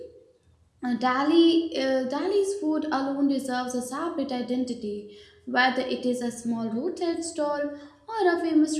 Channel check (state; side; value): identical; both; correlation 1.00